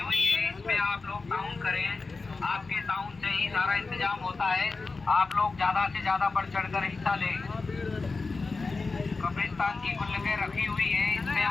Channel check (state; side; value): quieter; right; 4.0 dB